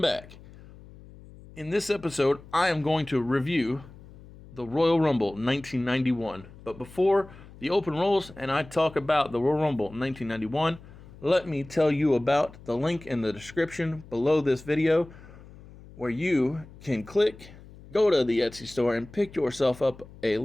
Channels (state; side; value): noise; left; hum, 20 dB below the sound